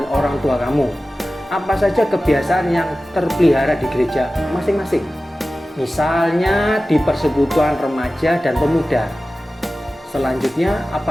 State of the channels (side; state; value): both; normal; correlation 0.96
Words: orang tua kamu. Apa saja kebiasaan yang terpelihara di gereja masing-masing? Misalnya di persekutuan remaja dan pemuda. Selanjutnya,